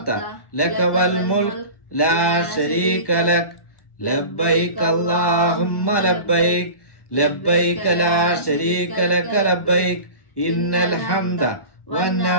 لك والملك لا شريك لك لبيك اللهم لبيك لبيك لا شريك لك لبيك إن الحمد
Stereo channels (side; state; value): right; late; 1.1 ms